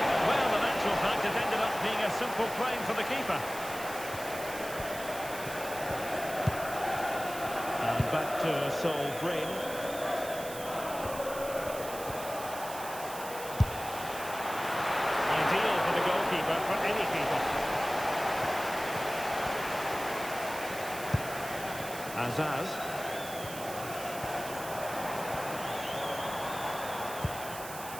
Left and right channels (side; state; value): right; noise; hiss, 11 dB below the sound